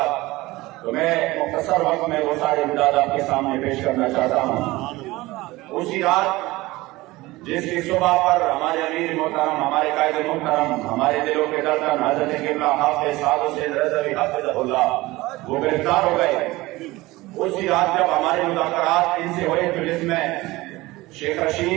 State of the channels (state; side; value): quieter; left; 19.8 dB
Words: تو میں مختصر وقت میں وہ سارے امداد آپ کے سامنے پیش کرنا چاہتا ہوں۔ اسی رات جس کی صبح پر ہمارے امیر محترم، ہمارے قائد محترم، ہمارے دلوں کے دردن حضرت قبلہ حافظ سعد حسین رضوی حفظہ اللہ وہ گرفتار ہو گئے، اسی رات جب ہمارے مذاکرات ان سے ہوئے تو جس میں شیخ